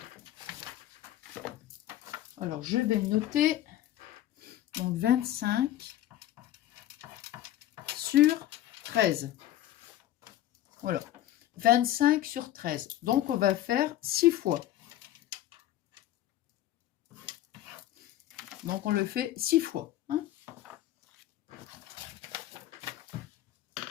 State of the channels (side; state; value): right; quieter; 13.4 dB